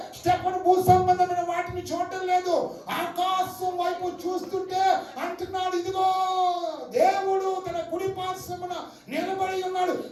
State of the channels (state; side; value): identical; both; correlation 1.00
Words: స్టెఫను భూ సంబంధమైన వాటిని చూడటం లేదు, ఆకాశం వైపు చూస్తుంటే అంటున్నాడు, ఇదిగో దేవుడు తన కుడి పార్శ్వమున నిలబడి ఉన్నాడు,